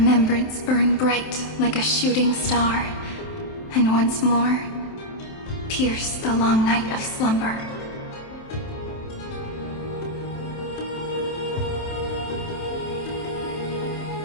burn bright like a shooting star, and once more, pierce the long night of slumber.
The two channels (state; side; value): late; right; 27 ms